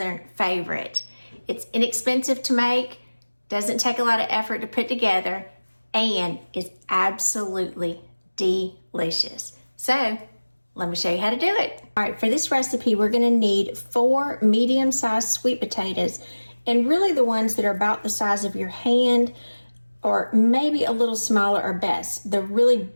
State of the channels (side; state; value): both; inverted; correlation -1.00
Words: favorite. It's inexpensive to make, doesn't take a lot of effort to put together, and is absolutely delicious. So, let me show you how to do it. All right, for this recipe, we're gonna need 4 medium-sized sweet potatoes, and really the ones that are about the size of your hand, or maybe a little smaller are best. The really